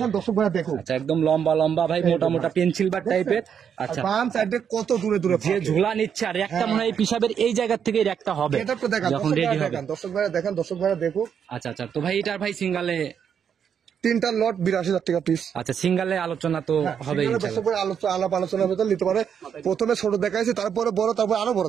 দর্শক ভাইরা দেখুন। আচ্ছা একদম লম্বা লম্বা ভাই, মোটা মোটা পেন্সিল বাট টাইপের। আচ্ছা বাম সাইডে কত দূরে দূরে যে ঝোলা নিচ্ছে, আর একটা মনে হয় পিসাবের এই জায়গা থেকে একটা হবে এটা তো দেখেন, যখন দর্শক রেডি ভাইরা হবে। দেখেন, দর্শক ভাইরা দেখেন, দর্শক ভাইরা দেখুক। আচ্ছা আচ্ছা, তো ভাই এটার ভাই সিঙ্গালে, 3টা লট 82,000 টাকা পিস। আচ্ছা সিঙ্গালে আলোচনা তো হবে সেখানে দর্শক ভাই আলাপ আলোচনার ভেতর নিতে পারে। প্রথমে ছোট দেখাইছি, তারপরে বড়, তারপরে আরো বড়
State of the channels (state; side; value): quieter; left; 7.8 dB